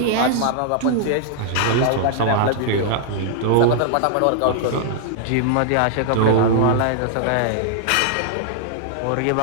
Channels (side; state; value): both; different; correlation -0.01